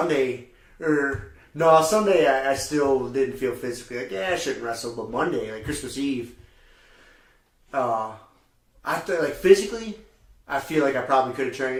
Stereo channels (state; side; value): identical; both; correlation 1.00